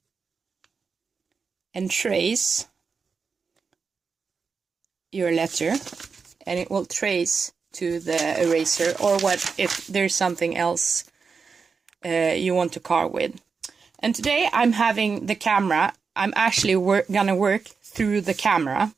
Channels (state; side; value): quieter; left; 5.2 dB